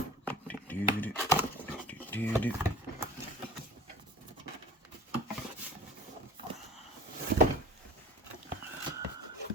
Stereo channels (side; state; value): both; normal; correlation 0.43